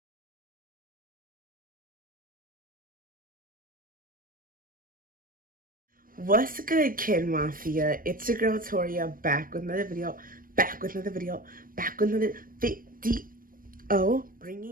What's good, Kid Mafia? It's your girl Toria, back with another video, back with another video,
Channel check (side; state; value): left; late; 0.41 ms